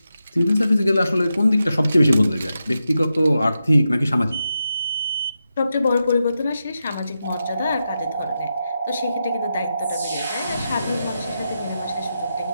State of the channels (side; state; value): both; inverted; correlation -0.88